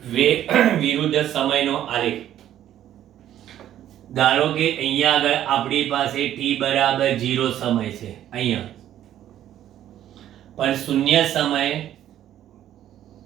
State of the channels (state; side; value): quieter; left; 11.7 dB